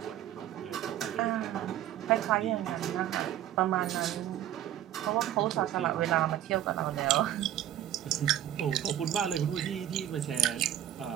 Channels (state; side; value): quieter; left; 11.8 dB